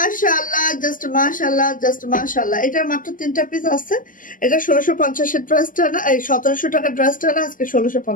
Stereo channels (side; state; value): right; late; 0.39 ms